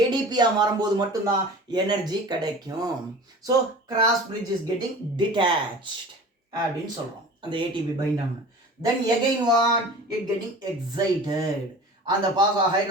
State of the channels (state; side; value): normal; both; correlation 0.40